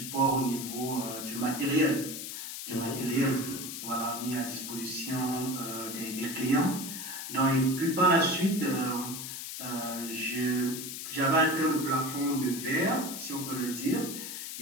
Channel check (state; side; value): noise; left; hiss, 7 dB below the sound